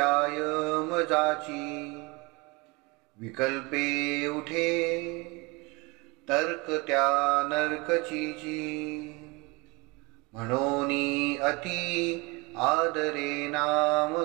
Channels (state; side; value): quieter; left; 25.9 dB